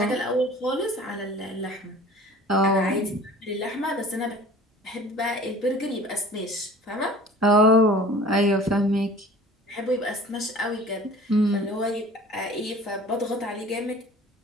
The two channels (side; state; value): both; normal; correlation 0.45